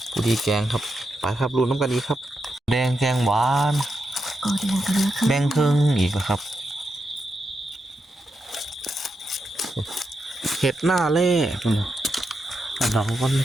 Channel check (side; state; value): both; normal; correlation 0.85